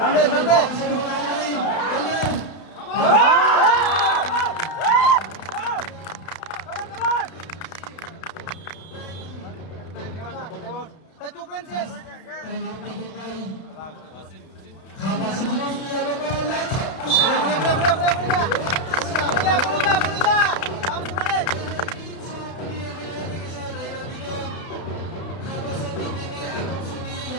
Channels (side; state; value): right; late; 32 ms